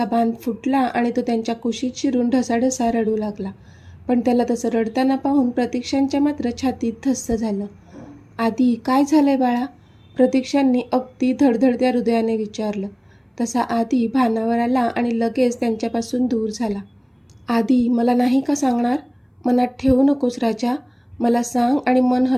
बांध फुटला आणि तो त्यांच्या कुशीत शिरून ढसाढसा रडू लागला. पण त्याला तसं रडताना पाहून प्रतीक्षांच्या मात्र छातीत धस्स झालं. आधी काय झालंय बाळा, प्रतीक्षांनी अगदी धडधडत्या हृदयाने विचारलं. तसा आधी भानावर आला आणि लगेच त्यांच्यापासून दूर झाला. आधी मला नाही का सांगणार? मनात ठेवू नकोस राजा, मला सांग आणि मन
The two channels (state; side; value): identical; both; correlation 1.00